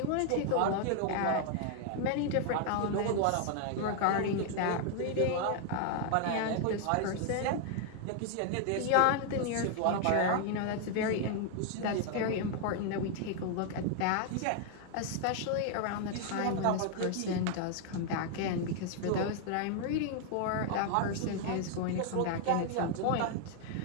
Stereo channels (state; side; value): different; both; correlation 0.00